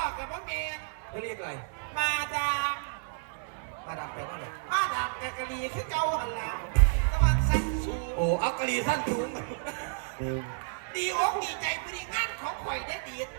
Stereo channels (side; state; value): left; silent; digital silence